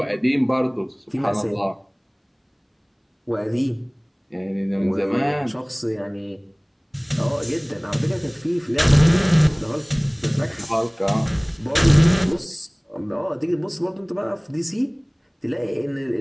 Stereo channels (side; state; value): both; identical; correlation 1.00